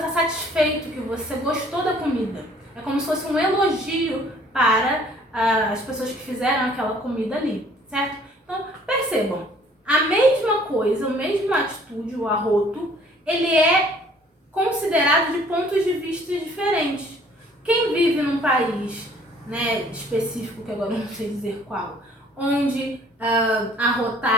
satisfeito, que você gostou da comida. É como se fosse um elogio para as pessoas que fizeram aquela comida ali, certo? Então, percebam, a mesma coisa, a mesma atitude, o arroto, ele é considerado de pontos de vista diferentes. Quem vive num país, né, específico, que agora eu não sei dizer qual, onde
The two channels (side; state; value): both; normal; correlation 0.56